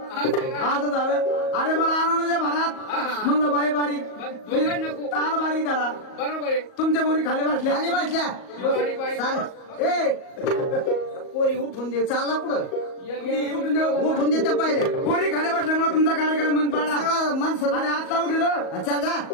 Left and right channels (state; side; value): late; right; 38 ms